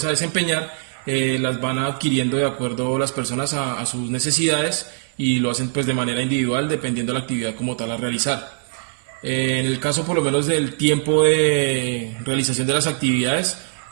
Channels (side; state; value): left; silent; digital silence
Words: a desempeñar, las van adquiriendo de acuerdo a las personas a sus necesidades, y lo hacen pues de manera individual dependiendo de la actividad como tal a realizar. En el caso por lo menos del tiempo de realización de las actividades,